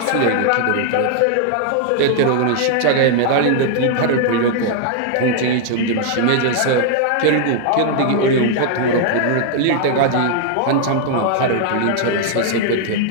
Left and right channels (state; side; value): different; both; correlation 0.00